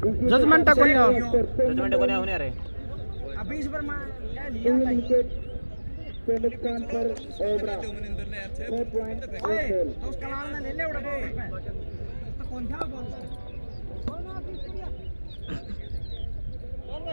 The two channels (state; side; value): inverted; both; correlation -1.00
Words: जजमेंट है कोनी जजमेंट को नहीं होने रे अभी इस पर विकेट के नुकसान पर ओबरा 4 पॉइंट